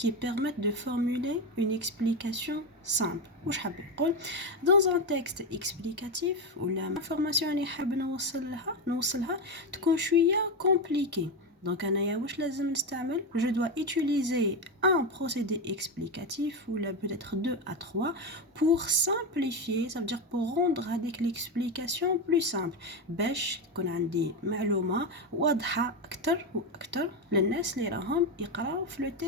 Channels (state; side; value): normal; both; correlation 0.12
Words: permettent de formuler une explication simple. Dans un texte explicatif où l'information اللي حاب نوصلها تكون شوية compliquée. Donc, je dois utiliser un procédé explicatif ou là peut-être 2 à 3 pour simplifier, ça veut dire pour rendre avec l'explication plus simple. باش تكون عندي معلومة واضحة أكتر وأكتر للناس اللي راهم يقراو في le